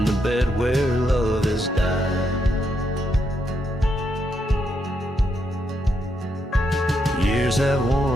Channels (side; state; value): both; normal; correlation 0.79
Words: the bed where love has died. Years have